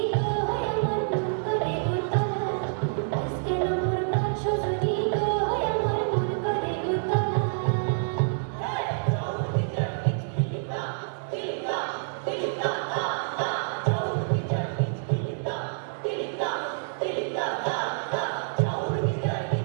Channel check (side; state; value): left; silent; 60 dB below the other